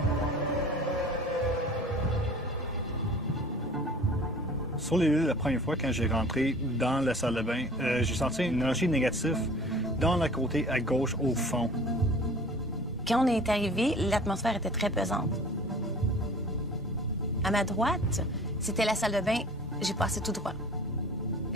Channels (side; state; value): both; normal; correlation 0.45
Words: Sur les lieux, la première fois, quand j'ai rentré dans la salle de bain, j'ai senti une énergie négative dans le côté à gauche au fond. Quand on est arrivé, l'atmosphère était très pesante. À ma droite, c'était la salle de bain. J'ai passé tout droit.